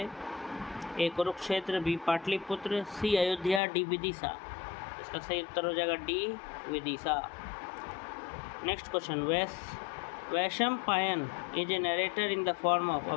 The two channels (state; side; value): drops out; right; at 3.6 s